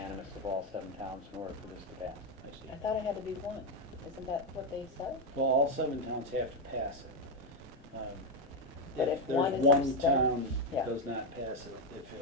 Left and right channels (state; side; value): normal; both; correlation 0.05